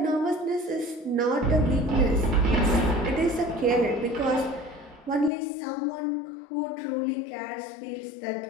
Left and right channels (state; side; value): drops out; right; at 5.3 s